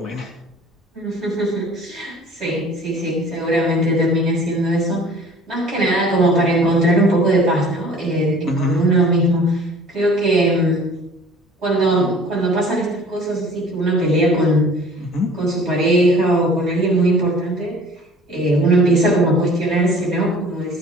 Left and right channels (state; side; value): normal; both; correlation 0.49